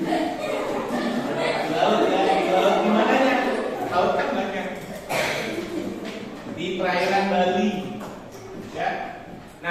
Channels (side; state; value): both; identical; correlation 1.00